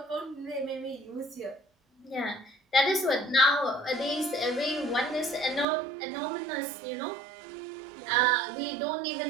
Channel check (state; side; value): drops out; left; at 5.7 s